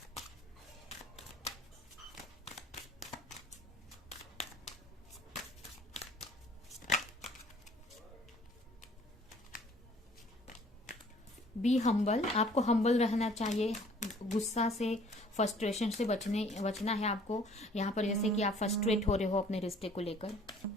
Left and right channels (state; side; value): normal; both; correlation 0.55